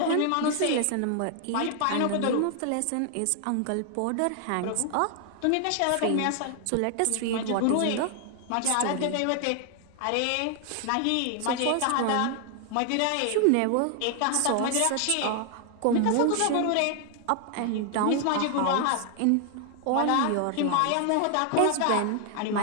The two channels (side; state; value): both; different; correlation 0.00